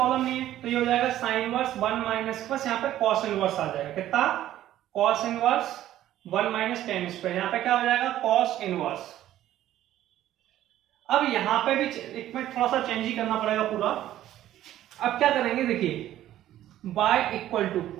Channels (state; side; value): quieter; left; 13.0 dB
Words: नहीं है। तो ये हो जाएगा साइन इनवर्स 1 माइनस बस यहाँ पे कॉस इनवर्स आ जाएगा, कितना, cos inverse 1 minus tan square, यहाँ पे क्या हो जाएगा कॉस इनवर्स। अब यहाँ पे भी एक मिनट थोड़ा सा चेंज ही करना पड़ेगा पूरा। अब क्या करेंगे, देखिए, y इक्वल टू